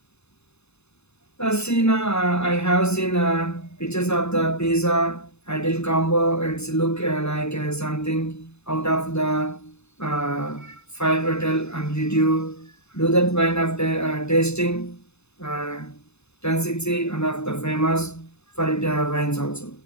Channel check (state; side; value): late; right; 0.80 ms